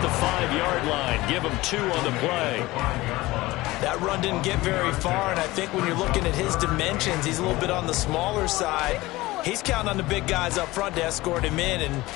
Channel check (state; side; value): quieter; right; 19.5 dB